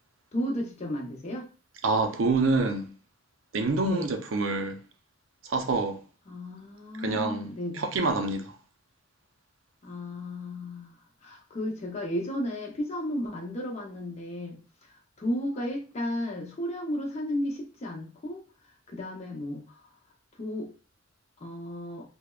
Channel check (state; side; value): normal; both; correlation 0.39